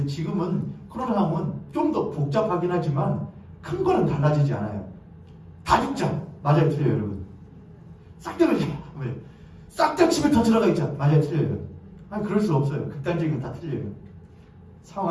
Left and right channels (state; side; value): identical; both; correlation 1.00